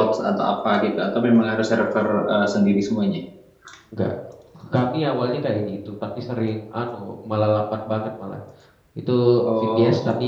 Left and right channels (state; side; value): identical; both; correlation 1.00